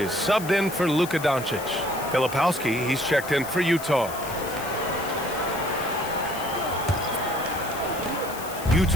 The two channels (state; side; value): noise; left; hiss, 13 dB below the sound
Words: subbed in for Luka Doncic. Filipowski, he's checked in for Utah.